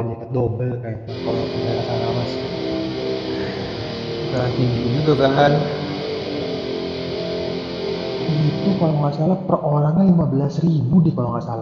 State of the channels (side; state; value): both; identical; correlation 1.00